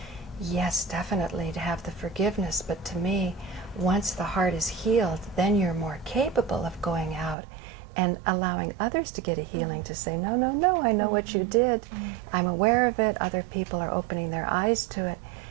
yes, definitely to have the forgiveness, but to me, once the heart is healed, then you're more capable of going out and allowing others to get a healing, to say, no, no, no, I know what you did. I'm aware of it. Other people are opening their eyes to it.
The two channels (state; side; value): drops out; left; at 7.4 s